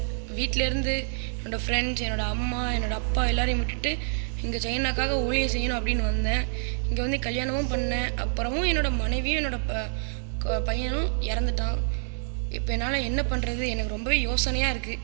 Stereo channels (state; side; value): silent; left; digital silence